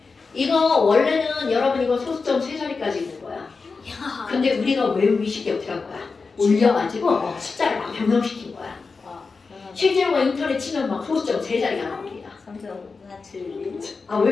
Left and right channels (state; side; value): quieter; right; 4.5 dB